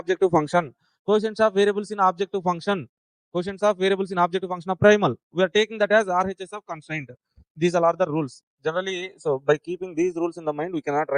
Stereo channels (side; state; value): both; identical; correlation 1.00